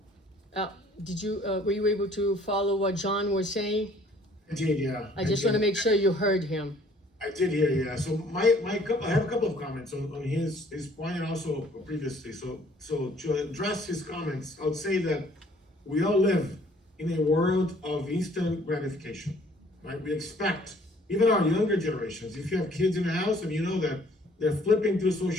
Were you able to follow what John was saying? I did, yeah. I just want to make sure you heard him. I did hear, yeah. So I have a couple of comments on his point and also previously. So to address his comments, I would say that we all live in a world of instant gratification, right? We expect, even our younger generations, if you have kids in the house and you know that they're flipping through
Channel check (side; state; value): both; normal; correlation 0.58